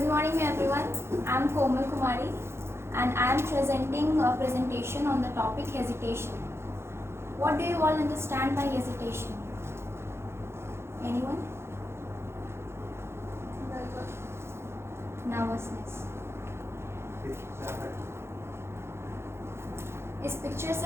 morning everyone. I am Komal Kumari and I am presenting a presentation on the topic hesitation. What do you all understand by hesitation? Anyone? Nervousness. इस picture से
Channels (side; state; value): left; late; 0.12 ms